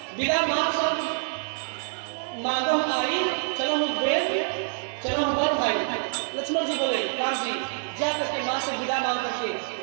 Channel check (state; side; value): silent; left; digital silence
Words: विदा मांगो आई, चलो हम चलो हम बड़ भाई। लक्ष्मण जी बोले, राम जी जा करके माँ से विदा मांग करके